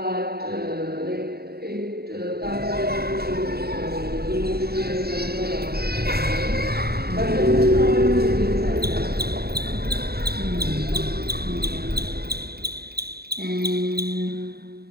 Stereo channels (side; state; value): left; late; 0.46 ms